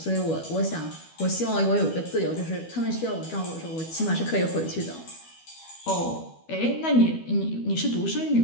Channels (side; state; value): right; late; 12 ms